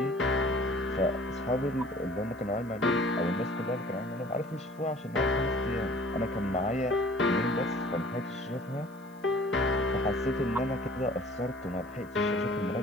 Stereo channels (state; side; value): noise; right; hiss, 28 dB below the sound